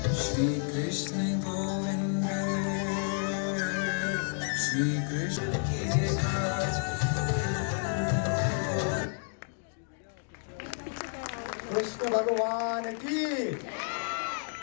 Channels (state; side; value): silent; right; 57 dB below the other